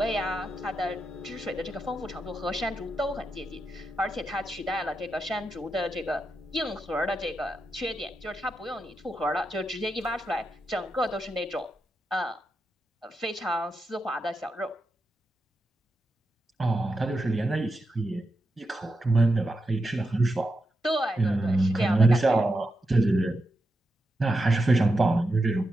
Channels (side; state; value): both; normal; correlation 0.87